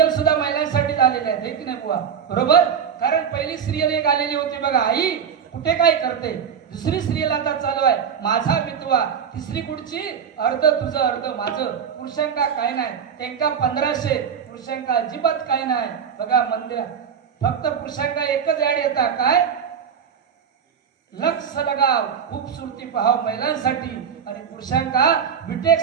सुद्धा महिलांसाठी आलेले आहेत की नाही बुवा बरोबर कारण पहिली सिरियल एक आलेली होती बघा आई कुठे काय करते दुसरी सिरियल आता चालू आहे माझा मितवा तिसरी कुठची अर्ध तुझं अर्ध माझं पुरुषांका काय नाही त्यांका 1500 पुरुषांका अजिबात काय नाही बघा मंदिर फक्त पुरुषांका एकच ऍड येतात काय लक्ष लगाव खूबसूरती पहाव महिलांसाठी आणि पुरुषांका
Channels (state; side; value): quieter; left; 7.5 dB